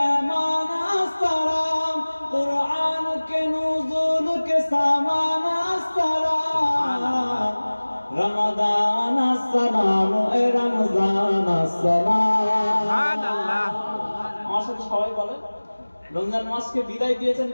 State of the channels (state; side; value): inverted; both; correlation -1.00